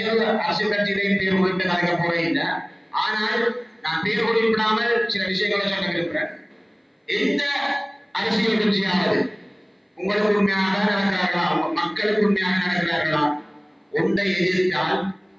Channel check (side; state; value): both; identical; correlation 1.00